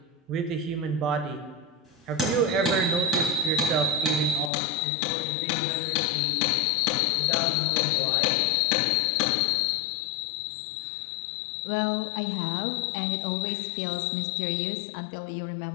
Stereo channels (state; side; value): drops out; right; at 4.5 s